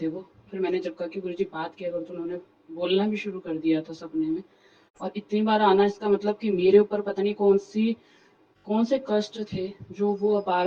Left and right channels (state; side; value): identical; both; correlation 1.00